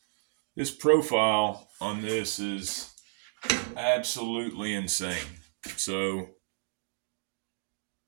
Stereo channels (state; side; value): silent; left; digital silence